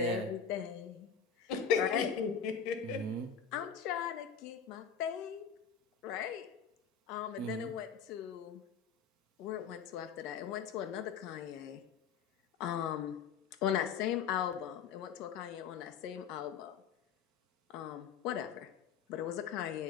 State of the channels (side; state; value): right; quieter; 7.0 dB